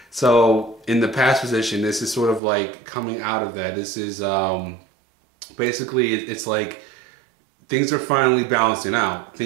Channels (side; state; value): left; drops out; at 2.4 s